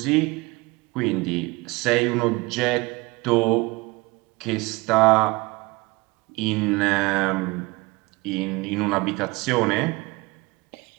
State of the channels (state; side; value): quieter; left; 23.9 dB